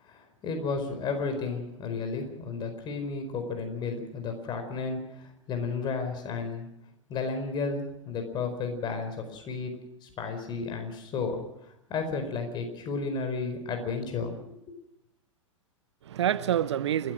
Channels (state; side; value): normal; both; correlation 0.07